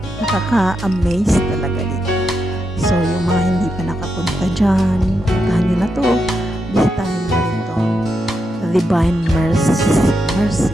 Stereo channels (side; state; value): both; normal; correlation 0.84